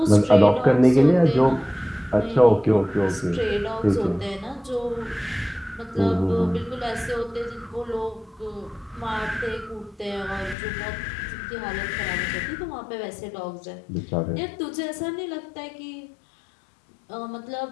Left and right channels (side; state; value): right; drops out; at 10.6 s